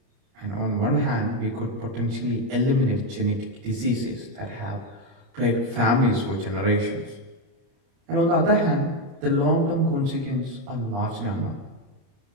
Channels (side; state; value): left; late; 30 ms